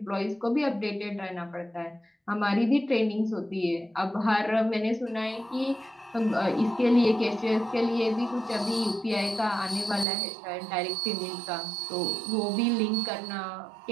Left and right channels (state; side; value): drops out; left; at 10.1 s